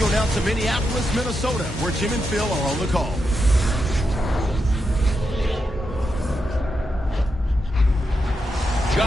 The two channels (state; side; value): normal; both; correlation 0.85